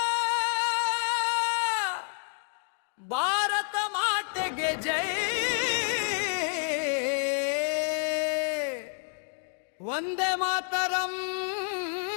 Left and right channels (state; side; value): silent; right; 58 dB below the other